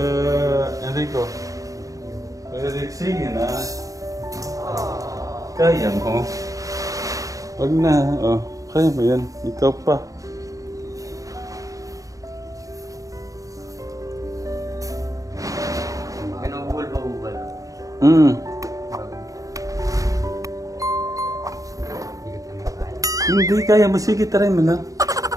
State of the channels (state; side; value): late; left; 0.16 ms